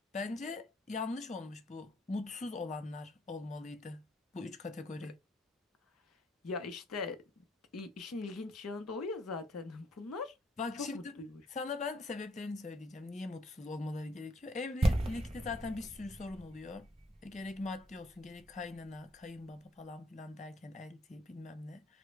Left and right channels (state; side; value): normal; both; correlation 0.68